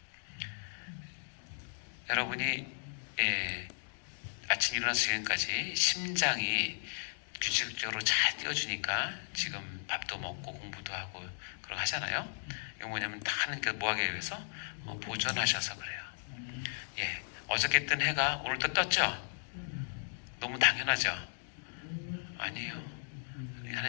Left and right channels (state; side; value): silent; right; digital silence